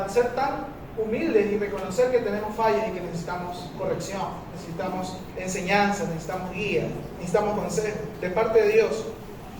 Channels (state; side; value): identical; both; correlation 1.00